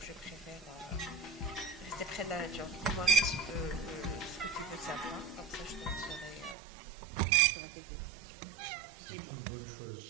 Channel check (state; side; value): drops out; left; at 6.6 s